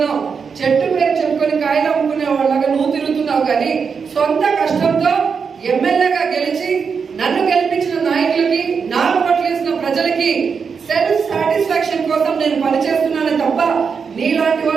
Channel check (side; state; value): left; quieter; 5.9 dB